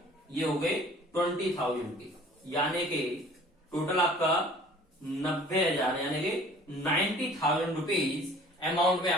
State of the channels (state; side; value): normal; both; correlation 0.50